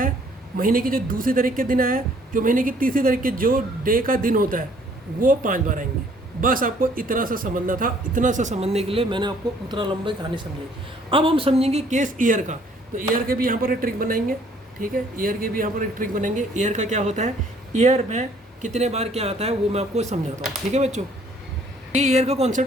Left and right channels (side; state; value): both; normal; correlation 0.60